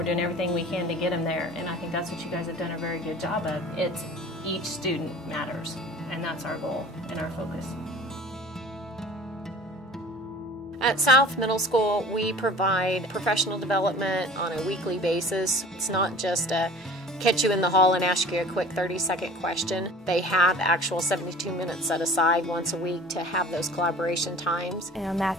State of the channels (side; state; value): both; normal; correlation 0.44